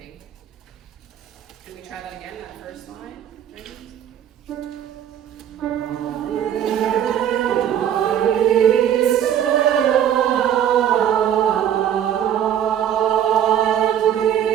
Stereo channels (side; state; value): left; quieter; 9.8 dB